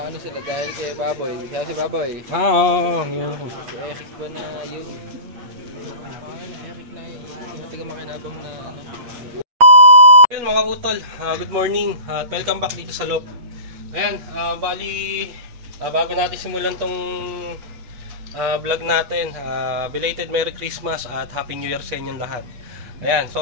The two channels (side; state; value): left; late; 8.4 ms